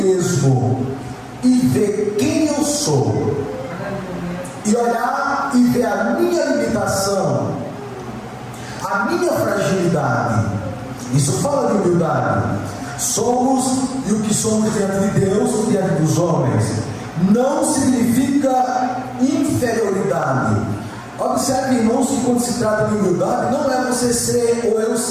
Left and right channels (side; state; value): both; identical; correlation 1.00